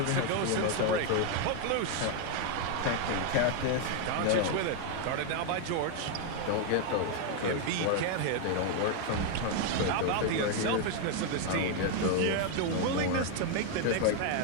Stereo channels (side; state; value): both; different; correlation 0.01